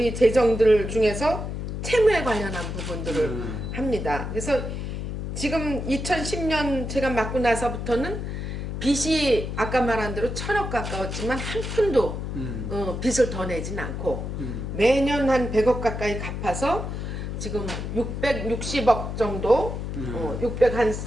재정들 중에서 채무에 관련한 부분들을 합니다. 그래서 지금 2010년 제가 맡고 나서부터는 빚이 아까 말한 대로 1,000억 가까웠지만 한 푼도 빚을 더 내진 않고 매년 한 100억 가까이 갚아서 지금 660억 정도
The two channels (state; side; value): noise; left; hum, 5 dB below the sound